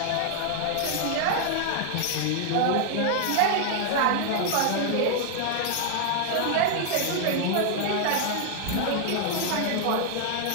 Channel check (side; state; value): both; different; correlation 0.00